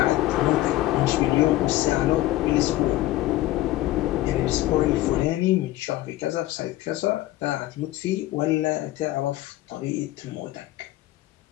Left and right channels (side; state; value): right; quieter; 16.2 dB